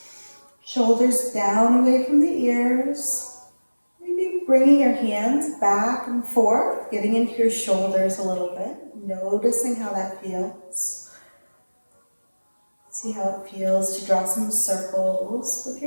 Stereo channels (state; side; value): inverted; both; correlation -1.00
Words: Shoulders down away from the ears. Maybe bringing your hands back and forth, getting into your shoulders a little bit, noticing how that feels. See how it feels to draw some circles with